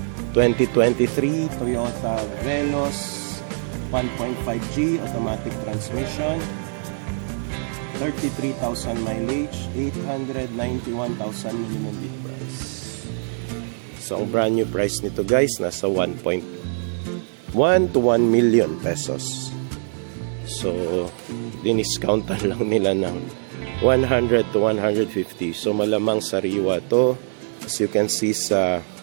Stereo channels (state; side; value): silent; left; digital silence